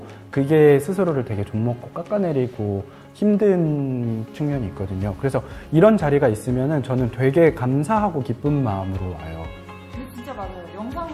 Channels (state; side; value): identical; both; correlation 1.00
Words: 그게 스스로를 되게 좀먹고 깎아내리고 힘든 측면이 있거든요. 그래서 이런 자리가 있으면은 저는 되게 감사하고 기쁜 마음으로 와요. 근데 진짜 맞아요.